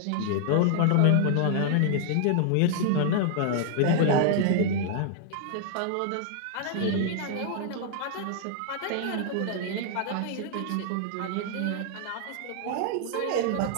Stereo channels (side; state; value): both; different; correlation 0.00